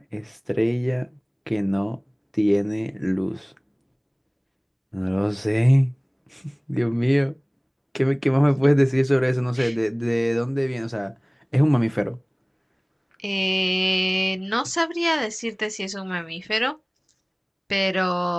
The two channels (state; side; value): identical; both; correlation 1.00